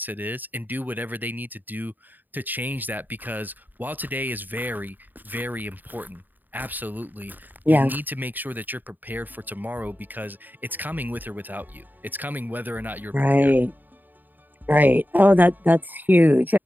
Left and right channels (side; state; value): left; late; 0.088 ms